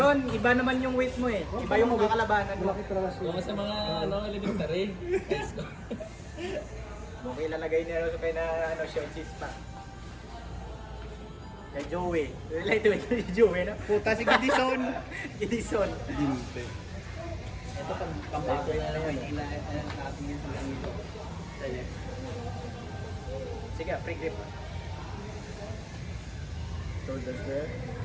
iba naman yung weight mo eh. Iba yung makakalabanan mo. Kung sa mga elementary. Guys ko. Okay, ilalagay niya kayo na short cheese pa. Kay Joey. Relate to kay Joey, no? Puta si Gidison. Edison. Dinte. Ito pang-bago na Maynila. Ating yung pang-ito. Sige, free grip. Shoulder square.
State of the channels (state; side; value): identical; both; correlation 1.00